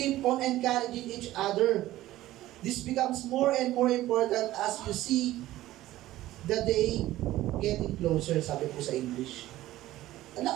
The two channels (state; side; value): quieter; left; 15.4 dB